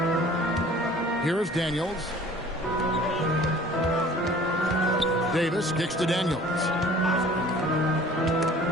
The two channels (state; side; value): normal; both; correlation 0.49